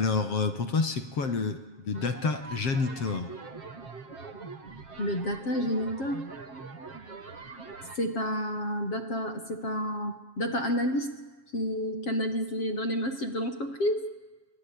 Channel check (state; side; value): late; right; 7.5 ms